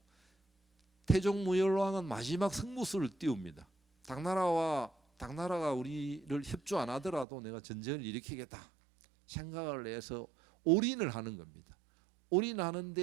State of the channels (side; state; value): left; drops out; at 7.2 s